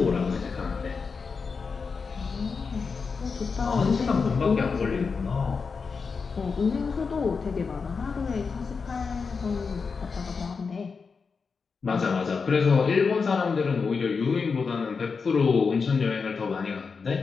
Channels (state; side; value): quieter; right; 5.1 dB